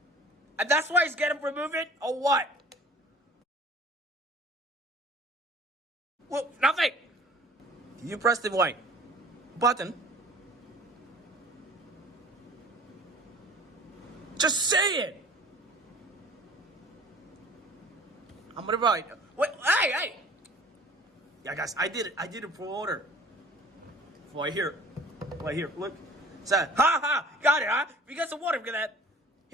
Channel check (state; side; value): normal; both; correlation 0.47